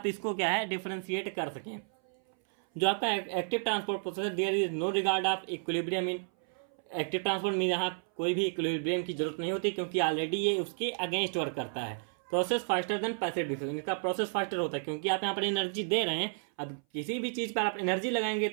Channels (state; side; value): silent; left; 57 dB below the other